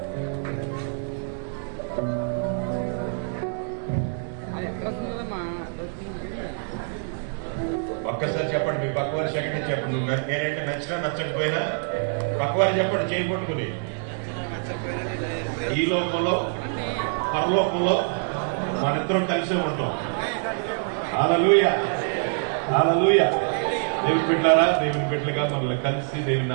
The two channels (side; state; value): left; silent; 56 dB below the other